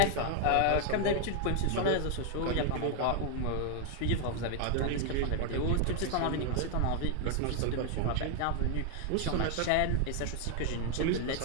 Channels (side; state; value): both; different; correlation 0.00